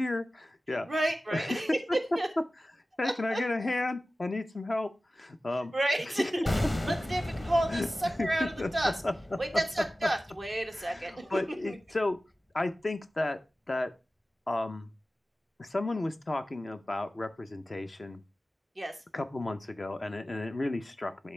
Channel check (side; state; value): both; normal; correlation 0.96